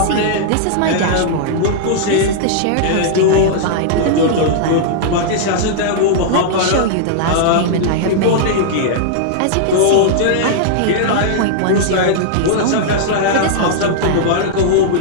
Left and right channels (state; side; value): different; both; correlation -0.01